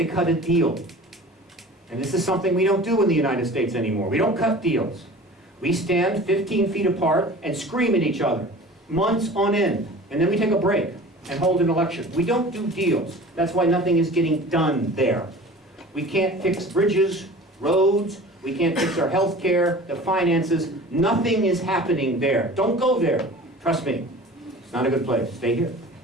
cut a deal. And this is something we don't do in the United States anymore. We don't cut deals. We stand 15 feet apart and scream at each other, months on end, and then we take a break and hold an election. We don't do deals. That's why nothing is getting done there. We can't fix bridges, roads, we can't fix our health care, the finances. Nothing is happening there. Don't go there. Trust me. It's not a good place. Stay here.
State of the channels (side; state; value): both; normal; correlation 0.41